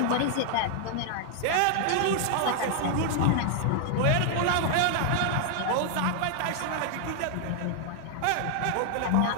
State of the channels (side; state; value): both; different; correlation 0.00